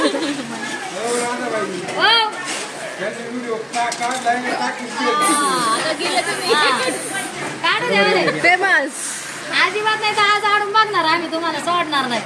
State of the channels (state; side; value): identical; both; correlation 1.00